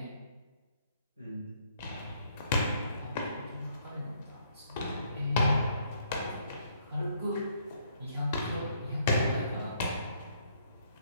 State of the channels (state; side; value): inverted; both; correlation -0.67